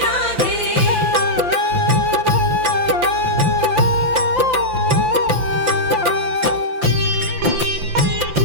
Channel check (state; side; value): late; left; 5.8 ms